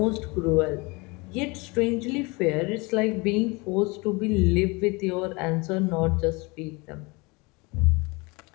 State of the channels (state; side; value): quieter; right; 26.6 dB